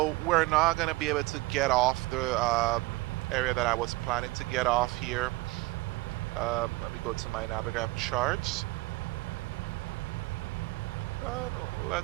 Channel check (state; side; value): quieter; left; 21.8 dB